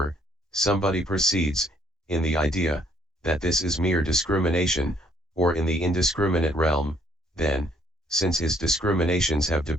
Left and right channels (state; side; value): normal; both; correlation 0.66